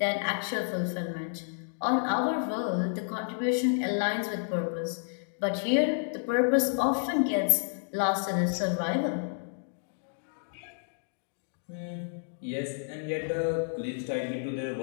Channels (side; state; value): right; silent; digital silence